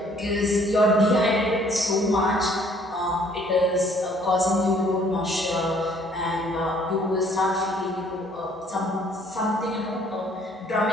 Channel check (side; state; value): both; normal; correlation 0.60